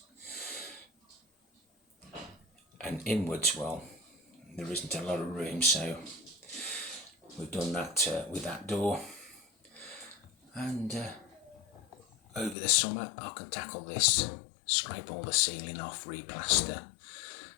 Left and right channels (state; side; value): drops out; right; at 12.6 s